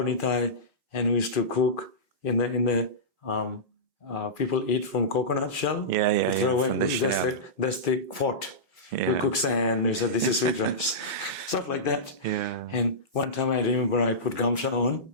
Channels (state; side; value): normal; both; correlation -0.16